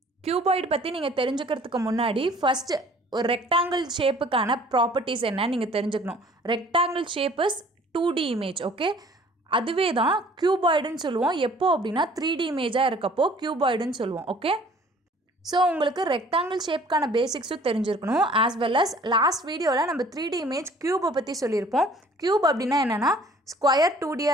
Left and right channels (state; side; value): normal; both; correlation 0.53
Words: கியூபாய்டு பற்றி நீங்கள் தெரிஞ்சுக்கிறதுக்கு முன்னாடி ஃபஸ்ட்டு ஒரு ரெக்டாங்கிள் ஷேப்புக்கான ப்ராப்பர்ட்டிஸ் என்னன்னு நீங்கள் தெரிஞ்சுக்கணும். Rectangle shape is 2D image. Okay, அதுவே தான் கியூபாய்டுன்னு சொல்லுவோம். எப்போ அப்படின்னா 3D இமேஜாக இருக்கப்போ கியூபாய்டுன்னு சொல்லுவோம். ஓகே, ஸோ உங்களுக்கு ரெக்டாங்கிள் ஷேப்க்கான பேசிக்ஸும் தெரிஞ்சிருக்கணும். ஆஸ் வெல் அஸ் லாஸ்ட் வீடியோவில் நம்ம 3D இமேஜ் க்யூபை பற்றி சொல்லியிருப்போம். க்யூப் அப்படின்னா என்னென்னா ஸ்கொயர்